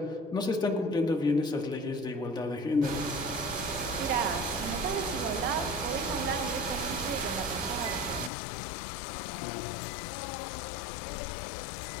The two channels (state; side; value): drops out; right; at 8.3 s